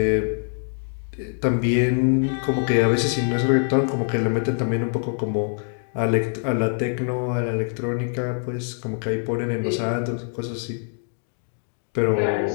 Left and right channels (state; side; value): silent; right; 63 dB below the other